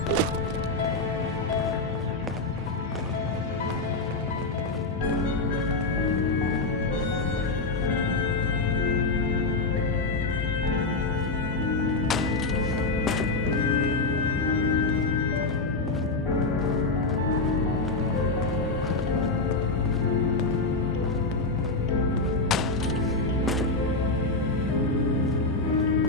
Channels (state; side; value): quieter; right; 3.5 dB